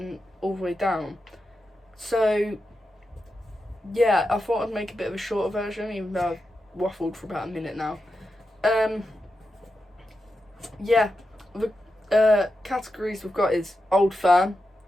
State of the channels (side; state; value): both; normal; correlation 0.89